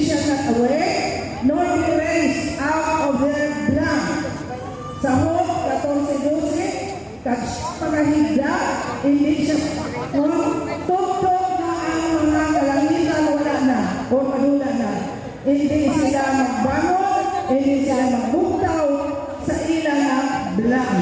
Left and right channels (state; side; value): identical; both; correlation 1.00